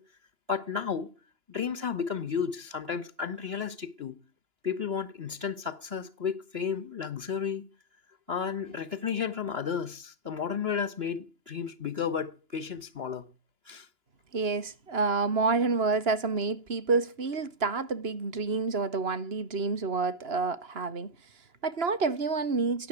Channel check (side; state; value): left; late; 2.9 ms